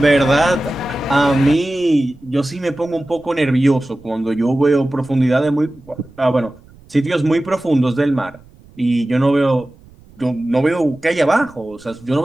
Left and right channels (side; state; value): right; noise; rumble, 26 dB below the sound